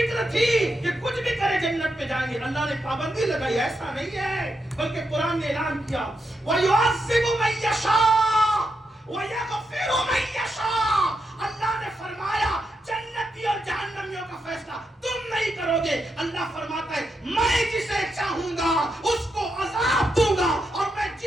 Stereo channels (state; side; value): normal; both; correlation 0.84